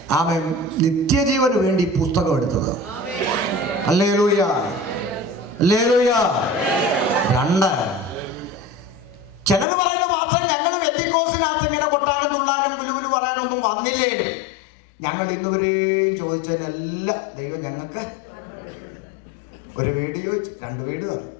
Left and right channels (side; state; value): right; drops out; at 9.7 s